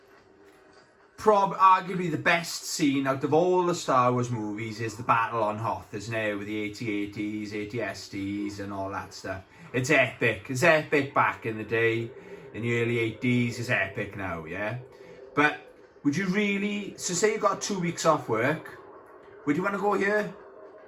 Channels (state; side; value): identical; both; correlation 1.00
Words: arguably the best scene out of all the Star Wars movies is the battle on Hoth, isn't it? With the AT-ATs, AT-STs and all that stuff. It's epic. It's epic back in the day. In the early 80s, it's epic now, yeah? But would you really... So say you got 2 weeks off work, would you want to go here?